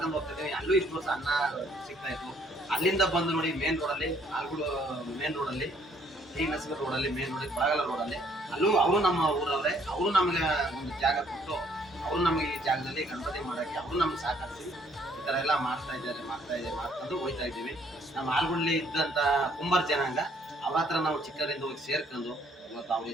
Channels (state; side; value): normal; both; correlation 0.65